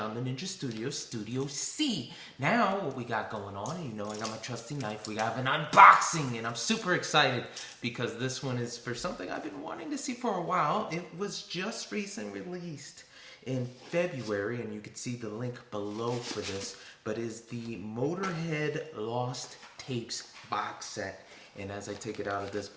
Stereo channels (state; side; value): identical; both; correlation 1.00